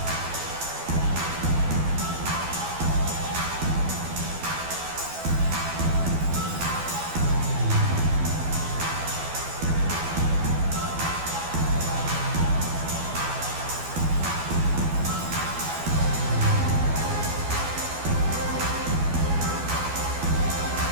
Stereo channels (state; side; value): late; left; 12 ms